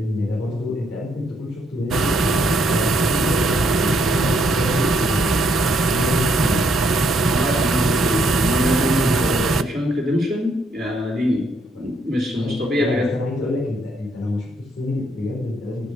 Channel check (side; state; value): both; normal; correlation 0.72